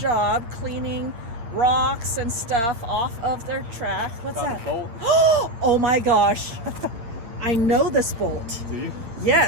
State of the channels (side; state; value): left; late; 8.7 ms